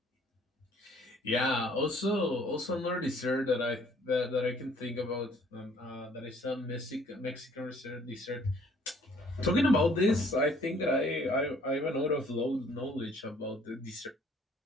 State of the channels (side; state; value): both; normal; correlation 0.59